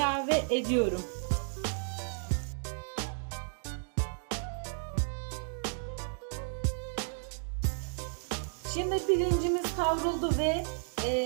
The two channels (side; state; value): left; silent; digital silence